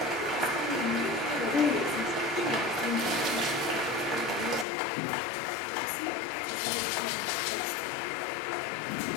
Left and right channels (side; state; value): right; drops out; at 4.7 s